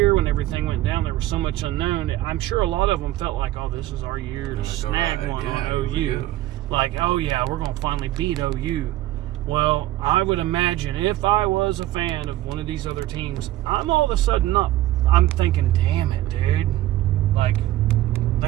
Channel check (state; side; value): quieter; left; 15.3 dB